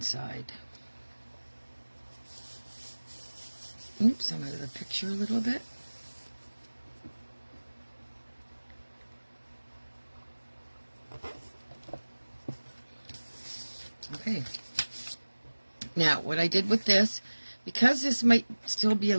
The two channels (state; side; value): inverted; both; correlation -1.00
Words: Oops, I'm out of the picture a little bit. Okay. Now, what I did with this, because this might still be a